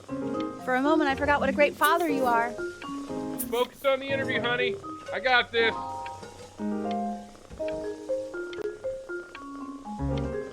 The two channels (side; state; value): both; identical; correlation 1.00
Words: For a moment, I forgot what a great father you are. Focus on the interview, honey. I got this.